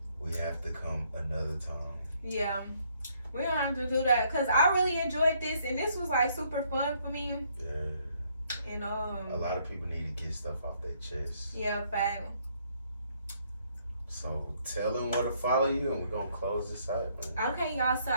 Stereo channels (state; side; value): inverted; both; correlation -0.68